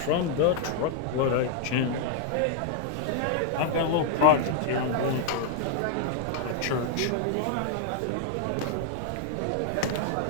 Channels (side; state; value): both; different; correlation 0.00